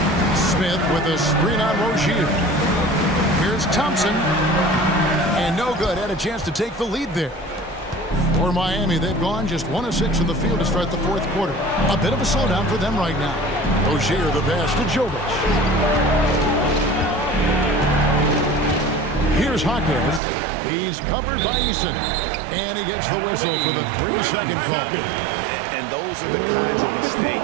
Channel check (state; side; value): drops out; left; at 20.2 s